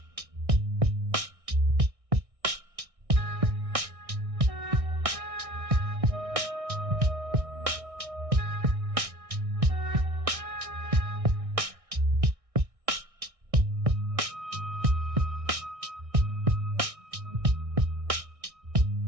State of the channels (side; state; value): left; late; 1.6 ms